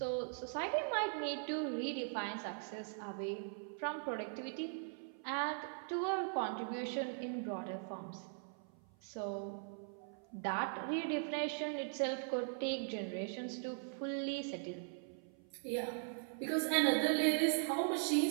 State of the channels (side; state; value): left; silent; 51 dB below the other